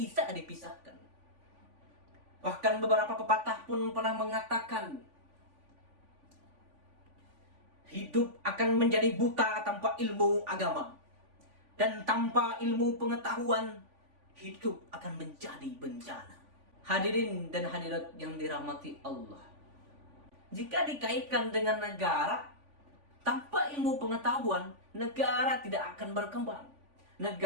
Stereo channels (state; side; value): late; left; 3.5 ms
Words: dipisahkan. Bahkan beberapa pepatah pun pernah mengatakan, hidup akan menjadi buta tanpa ilmu agama. Dan tanpa ilmu pengetahuan, hidup akan menjadi bencana. Hadirin dan hadirat yang dirahmati Allah. Jika dikaitkan dengan negara, tanpa ilmu pengetahuan, negara tidak akan berkembang.